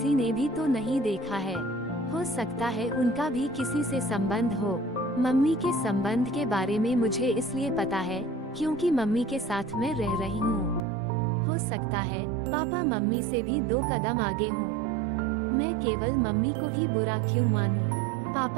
ने भी तो नहीं देखा है। हो सकता है उनका भी किसी से संबंध हो। मम्मी के संबंध के बारे में मुझे इसलिए पता है क्योंकि मम्मी के साथ मैं रह रही हूँ। हो सकता है पापा मम्मी से भी 2 कदम आगे हों। मैं केवल मम्मी को ही बुरा क्यों मानूं?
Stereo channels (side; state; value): left; drops out; at 10.8 s